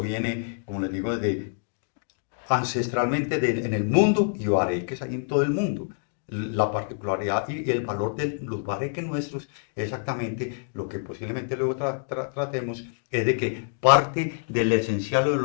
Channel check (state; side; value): silent; right; digital silence